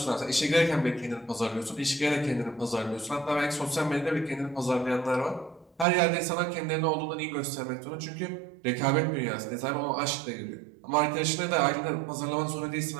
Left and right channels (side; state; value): left; drops out; at 5.9 s